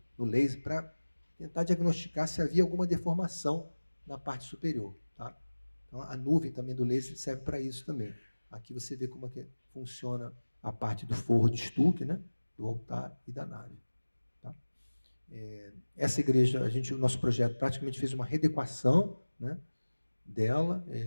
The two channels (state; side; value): inverted; both; correlation -1.00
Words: no laser para tentar diagnosticar se havia alguma deformação na parte superior. Tá? Então, a nuvem também do laser serve para isso também. Aqui você vê como é que funciona a parte do forro de estuque, né? Do altar e da nave. Tá? Essa igreja, o nosso projeto praticamente fez uma readequação, né, dela,